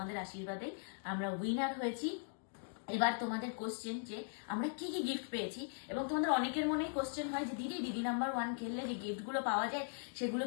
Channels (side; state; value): right; silent; digital silence